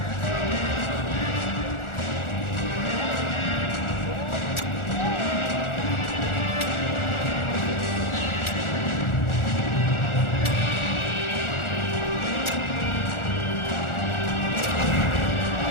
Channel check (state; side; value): late; right; 1.4 ms